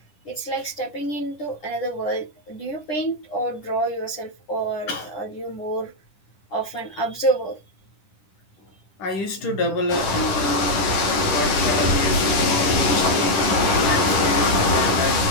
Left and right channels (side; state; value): right; late; 10 ms